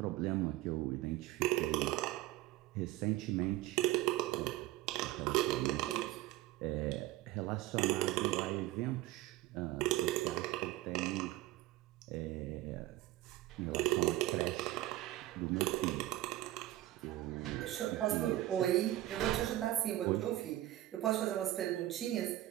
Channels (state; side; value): quieter; left; 15.8 dB